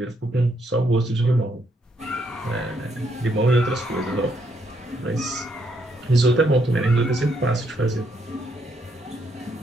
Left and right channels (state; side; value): normal; both; correlation 0.74